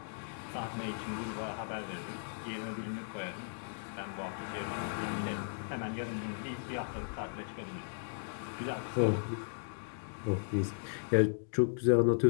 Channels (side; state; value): right; silent; digital silence